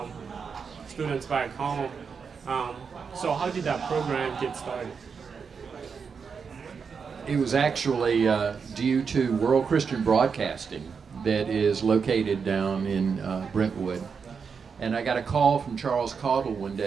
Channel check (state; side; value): quieter; left; 5.9 dB